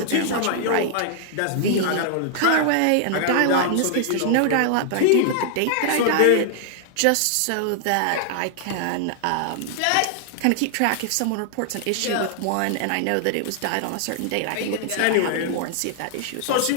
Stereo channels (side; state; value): both; different; correlation 0.00